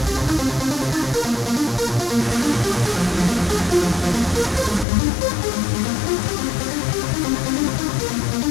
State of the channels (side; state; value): right; drops out; at 4.9 s